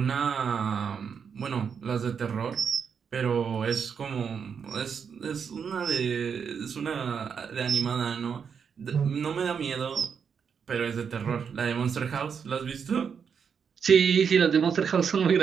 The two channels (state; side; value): quieter; left; 6.7 dB